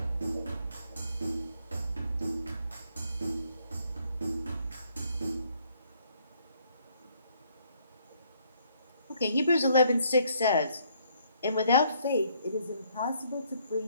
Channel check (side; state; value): both; inverted; correlation -0.67